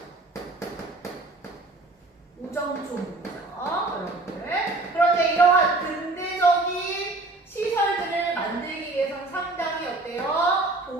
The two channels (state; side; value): quieter; left; 3.0 dB